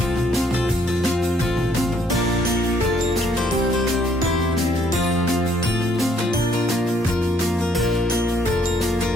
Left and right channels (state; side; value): normal; both; correlation 0.66